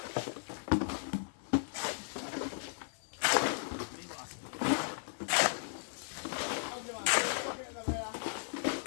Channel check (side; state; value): right; silent; 54 dB below the other